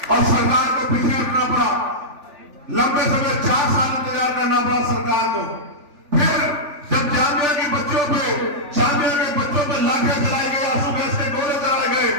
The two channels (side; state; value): left; late; 3.4 ms